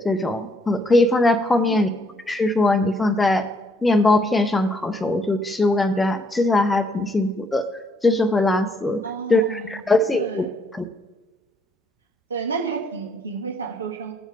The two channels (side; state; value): both; normal; correlation 0.70